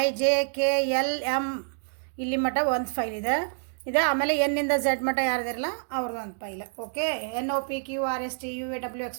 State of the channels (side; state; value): left; silent; digital silence